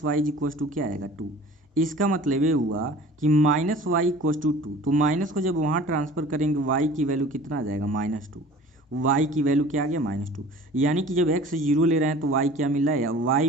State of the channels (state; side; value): normal; both; correlation 0.45